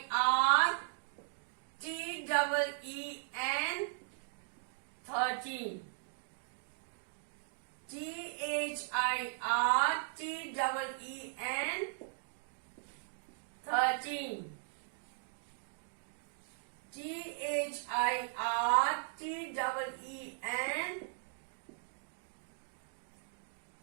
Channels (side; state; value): left; silent; digital silence